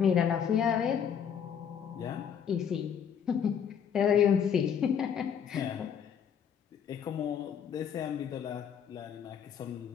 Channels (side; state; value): right; quieter; 7.9 dB